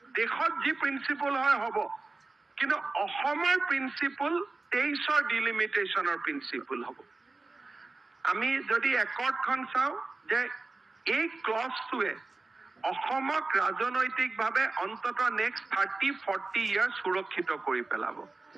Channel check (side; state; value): left; quieter; 3.5 dB